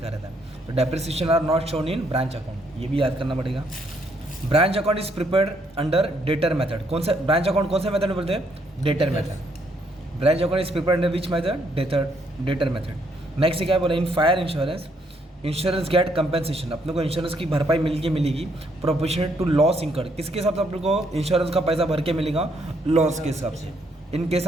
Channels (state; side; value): normal; both; correlation 0.71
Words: रहता है, तो depreciation are not shown in branch account, ये भी याद करना पड़ेगा। Branch account is prepared under debtor method, कौन सा ब्रांच अकाउंट कौन सा मेथड में बोलते हैं, debtor method. Branch account is prepared under which method, debtor method. Next क्या बोला, in fire insurance, insurance get compensation, अपने को इंश्योरेंस की भरपाई मिलेगी प्रोपोर्शनल टू लॉस इंकर्ड, किसके हिसाब से अपने को इंश्योरेंस का पैसा भर के मिलेगा, लॉस के हिसाब से। इन केस